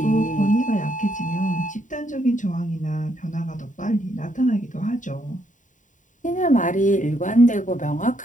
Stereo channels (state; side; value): late; right; 0.37 ms